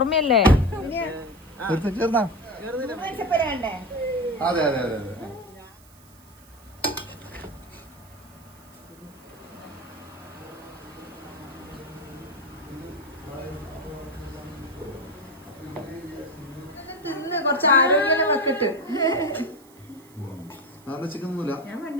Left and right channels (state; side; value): noise; right; hiss, 26 dB below the sound